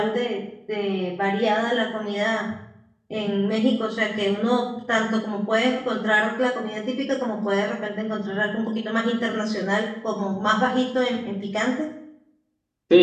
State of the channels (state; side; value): identical; both; correlation 1.00